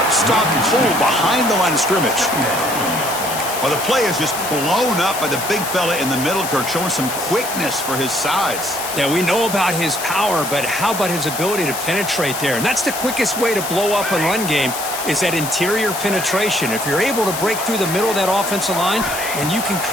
Stopped cold behind the line of scrimmage. Well, the play is just blown up by the big fella in the middle, Kirk, showing some quickness for his size. Yeah, we know about his power, but how about his ability to penetrate there? And that's the quickest way to blow up a run game, is that interior penetration. If you're able to break through the middle of that offensive line, then you can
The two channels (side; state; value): left; noise; hiss, 7 dB below the sound